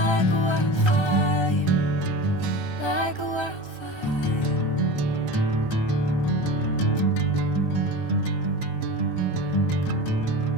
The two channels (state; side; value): late; right; 1.3 ms